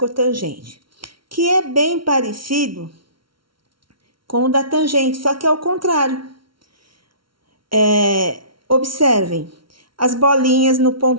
que é bem parecido com o da tangente, só que é o contrário. Observem as bolinhas no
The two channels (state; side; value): late; left; 0.74 ms